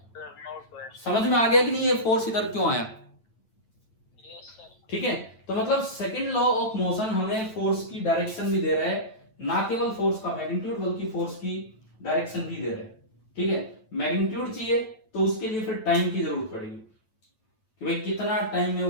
समझ में आ गया कि नहीं ये फोर्स इधर क्यों आया, ठीक है। तो मतलब सेकंड लॉ ऑफ मोशन हमें फोर्स की डायरेक्शन भी दे रहा है, ना केवल फोर्स का मैग्नीट्यूड बल्कि फोर्स की डायरेक्शन भी दे रहा है, ठीक है। मैग्नीट्यूड चाहिए तो उसके लिए फिर टाइम की जरूरत पड़ेगी कि भाई कितना टाइम में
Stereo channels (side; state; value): right; late; 9.0 ms